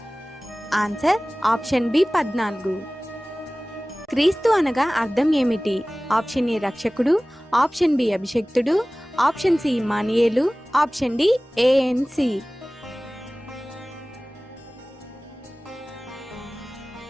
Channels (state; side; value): normal; both; correlation 0.98